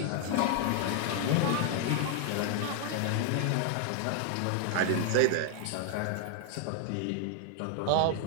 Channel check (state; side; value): different; both; correlation 0.00